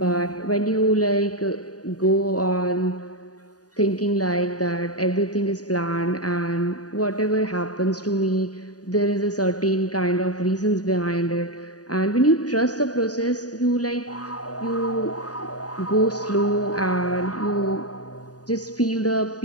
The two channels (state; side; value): late; right; 0.68 ms